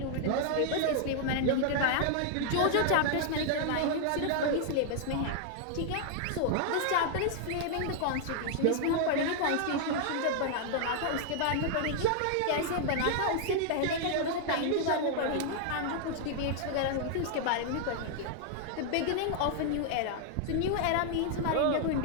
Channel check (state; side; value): different; both; correlation 0.00